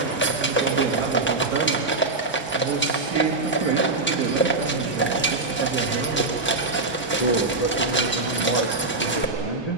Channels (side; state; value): left; quieter; 3.3 dB